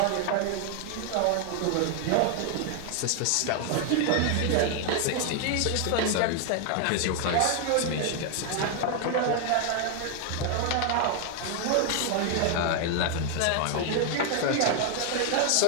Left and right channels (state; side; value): different; both; correlation 0.00